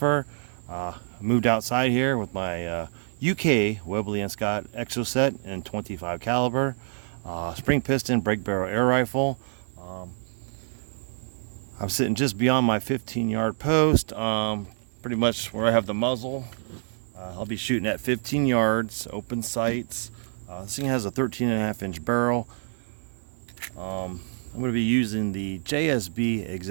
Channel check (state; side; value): silent; left; 60 dB below the other